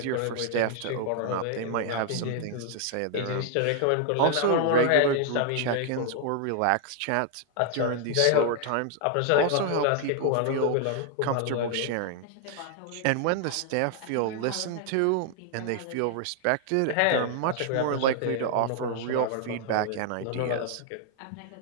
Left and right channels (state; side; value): different; both; correlation 0.00